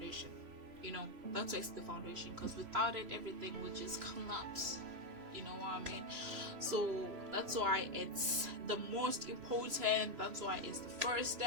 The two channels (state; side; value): late; left; 3.0 ms